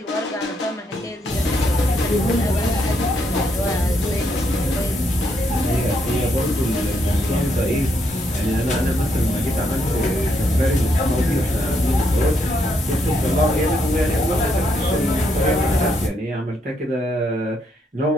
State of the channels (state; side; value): normal; both; correlation 0.76